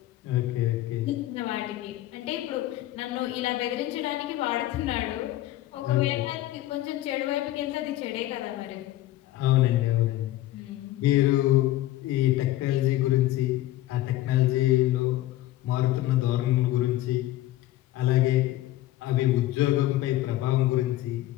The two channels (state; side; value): quieter; right; 15.2 dB